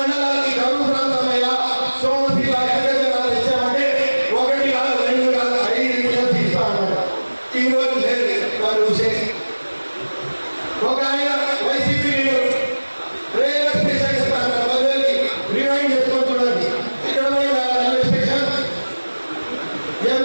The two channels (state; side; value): inverted; both; correlation -1.00